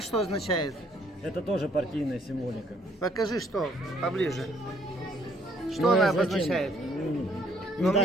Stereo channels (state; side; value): normal; both; correlation 0.65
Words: что означает? Это тоже партийная символика. Покажи, что поближе. Что Ну, она а зачем? обозначает? Ну,